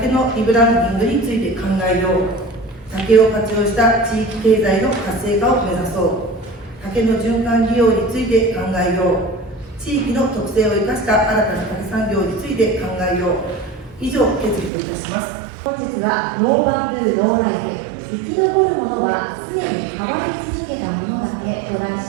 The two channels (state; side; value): drops out; left; at 14.7 s